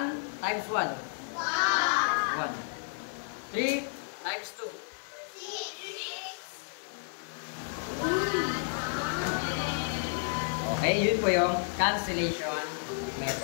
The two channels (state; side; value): silent; right; 57 dB below the other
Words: times 1. 1. 3 times 2. 6. Okay, yun po yung cancellation